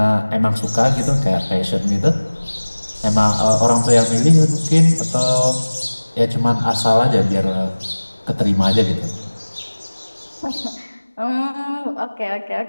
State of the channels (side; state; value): both; inverted; correlation -1.00